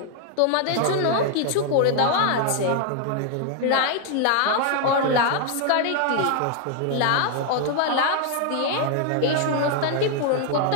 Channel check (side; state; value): both; different; correlation 0.00